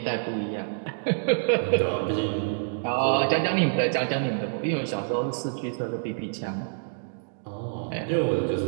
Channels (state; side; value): silent; left; digital silence